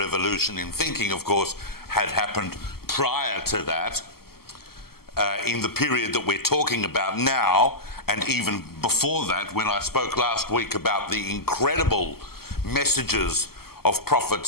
in thinking, of course, had happened prior to that, in the period that we're talking about now, and even before that, when I spoke last week about the incredible messages of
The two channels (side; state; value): right; late; 0.95 ms